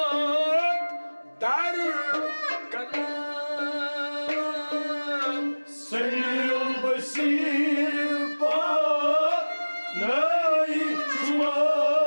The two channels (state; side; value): inverted; both; correlation -1.00